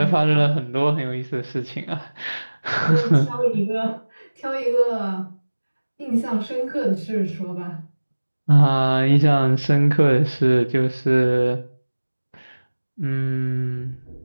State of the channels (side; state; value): both; inverted; correlation -1.00